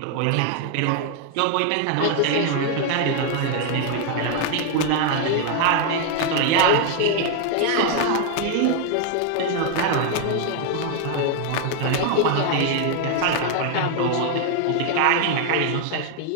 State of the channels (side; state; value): both; different; correlation 0.00